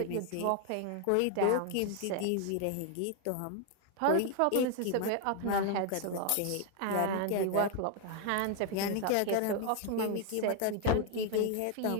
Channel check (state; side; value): different; both; correlation 0.00